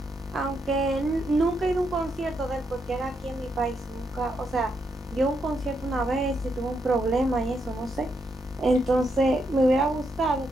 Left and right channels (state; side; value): normal; both; correlation 0.80